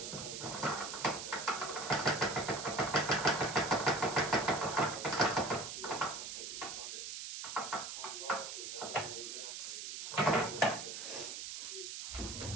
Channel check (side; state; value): right; noise; hiss, 6 dB below the sound